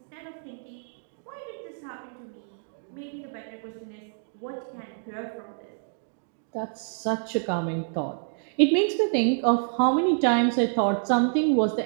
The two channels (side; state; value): left; silent; 60 dB below the other